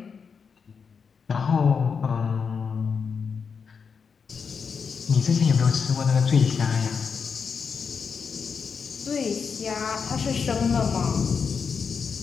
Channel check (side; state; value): right; quieter; 5.9 dB